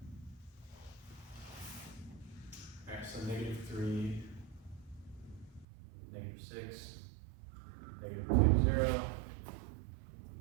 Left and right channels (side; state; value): left; drops out; at 5.7 s